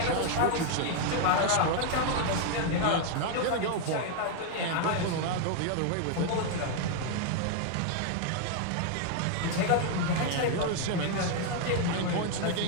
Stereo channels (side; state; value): both; different; correlation 0.00